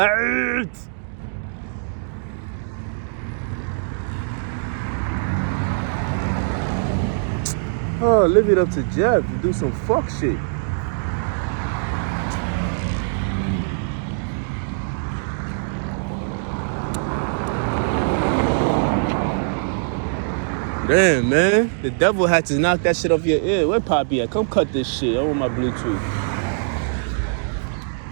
Oh, leave it up to Jeff to do some fuck shit. Damn, man. The devil had to knock that shit off your ear. Where Poppy at? Come cut this shit. I want my Bluetooth.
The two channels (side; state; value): left; silent; digital silence